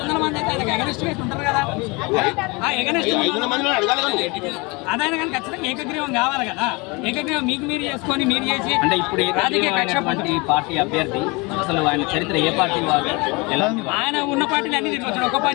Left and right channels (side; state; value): right; quieter; 27.1 dB